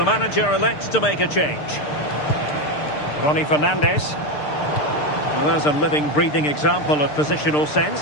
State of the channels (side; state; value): right; late; 6.7 ms